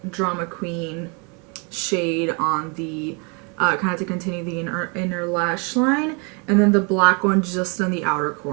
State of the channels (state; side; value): quieter; left; 33.3 dB